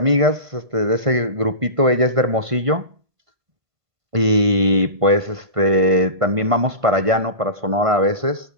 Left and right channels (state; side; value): late; left; 1.5 ms